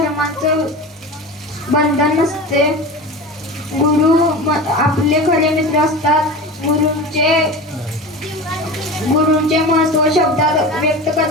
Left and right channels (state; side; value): normal; both; correlation 0.30